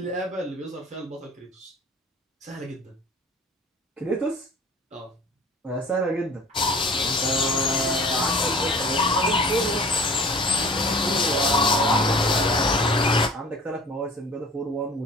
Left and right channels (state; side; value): normal; both; correlation 0.45